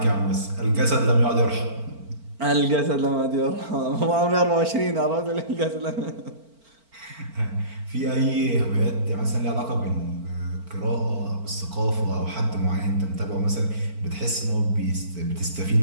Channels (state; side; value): late; left; 4.4 ms